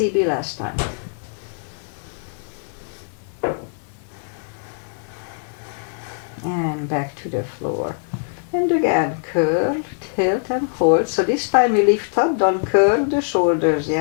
last time. And back to the floor. And again, curl, tilt and hold. So this time we lift up, don't curl the shoulders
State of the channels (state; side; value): silent; right; 64 dB below the other